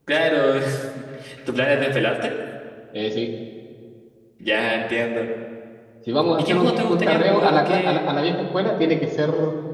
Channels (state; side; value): identical; both; correlation 1.00